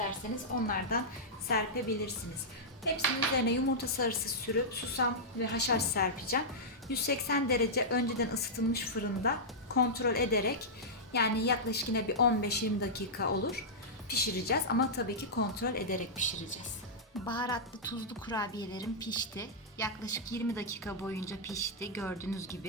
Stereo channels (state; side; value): normal; both; correlation -0.10